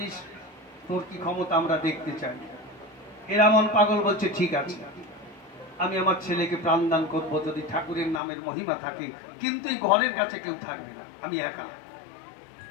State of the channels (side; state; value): right; drops out; at 8.2 s